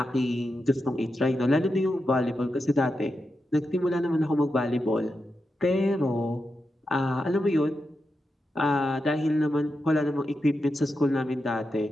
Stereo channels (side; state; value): both; normal; correlation 0.88